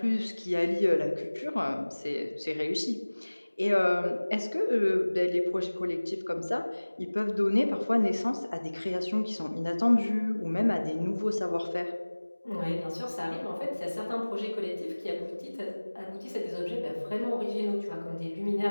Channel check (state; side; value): inverted; both; correlation -1.00